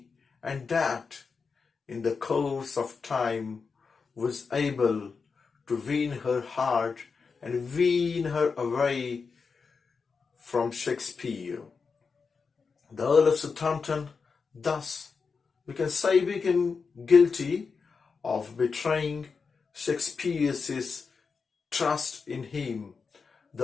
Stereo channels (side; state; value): right; quieter; 5.1 dB